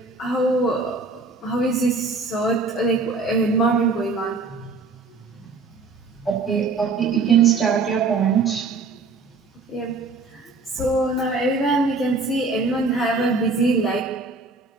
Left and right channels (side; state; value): left; quieter; 4.0 dB